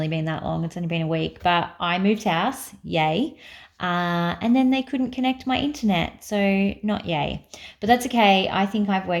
been that long. It's only been a week, but I moved house. Yay. And then they couldn't connect my internet. So, not yay. But that's okay. I think I've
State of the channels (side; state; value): both; identical; correlation 1.00